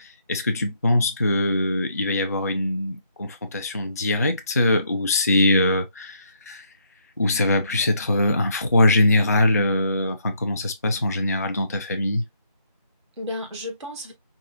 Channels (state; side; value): inverted; both; correlation -0.72